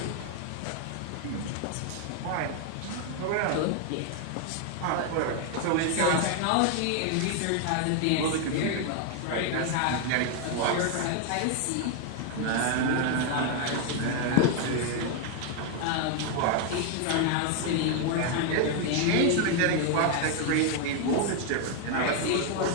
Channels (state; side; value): different; both; correlation 0.00